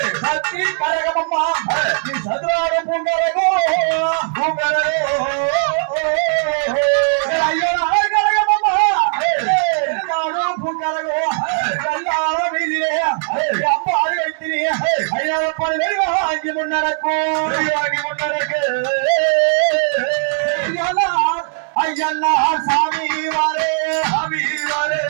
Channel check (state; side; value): silent; left; 67 dB below the other